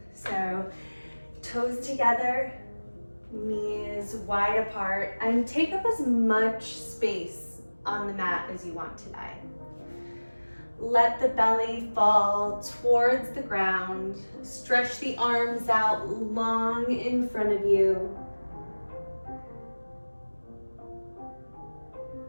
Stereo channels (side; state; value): both; inverted; correlation -1.00